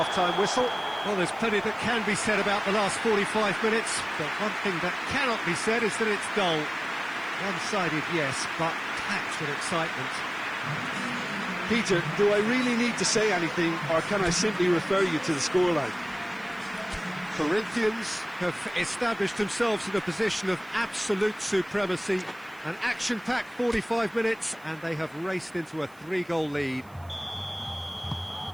whistle. Well, there's plenty that can be said about the last 45 minutes, but one thing that cannot be said is that it's dull. One-sided, yes, but packed with excitement. Peter, do I really need to say anything, or can I simply refer you to the scoreline? Corinthians have established themselves in a position of absolute supremacy. An action-packed 45 minutes, and they have raced into a 3-goal lead.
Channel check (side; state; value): right; noise; hiss, 28 dB below the sound